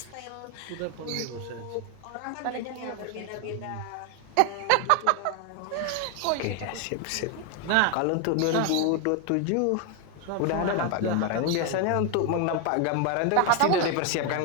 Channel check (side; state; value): both; different; correlation 0.01